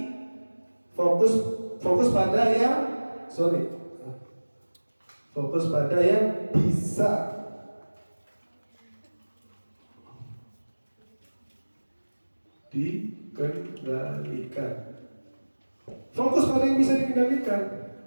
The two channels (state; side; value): inverted; both; correlation -1.00